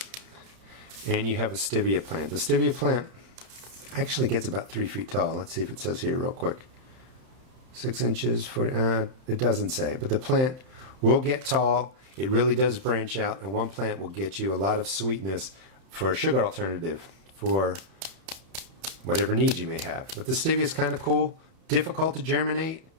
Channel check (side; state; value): left; late; 31 ms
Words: and you have a Stevia plant. The Stevia plant actually gets about 3 feet tall. Let's see if it says here real quick. 6 inches, 40, it doesn't say, but the plant will get tall. It really does branch out, and one plant will get you a lot of sweetness for a sugar alternative for whatever needs you may have. But the Stevia is kind of cool, difficult to germinate,